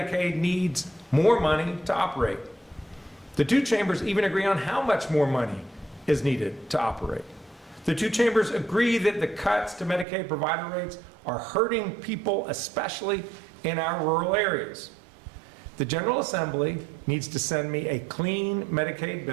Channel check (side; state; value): left; drops out; at 10.1 s